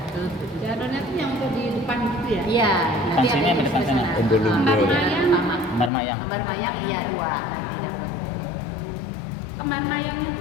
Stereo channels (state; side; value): drops out; right; at 5.9 s